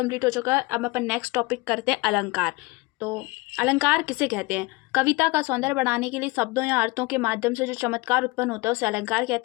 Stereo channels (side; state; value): right; quieter; 23.7 dB